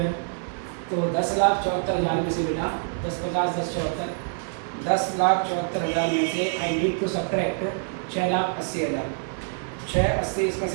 तो 10,74,000 में से बेटा 10,50,000 10,74,000, 10,74,000 में से आई नीड टू सब्ट्रैक्ट 6,80,000। 680 इसमें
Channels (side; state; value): left; silent; 61 dB below the other